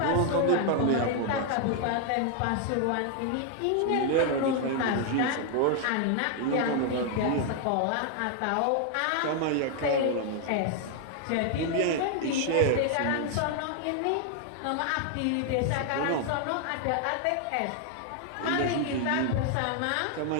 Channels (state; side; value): different; both; correlation 0.00